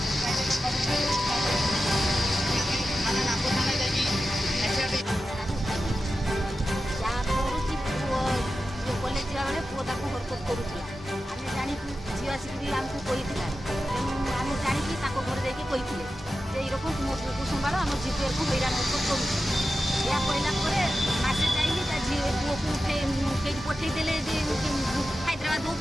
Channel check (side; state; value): both; normal; correlation 0.92